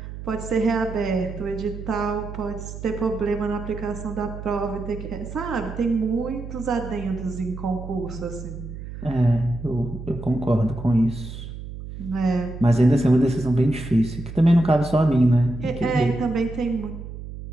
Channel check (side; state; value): right; noise; hum, 10 dB below the sound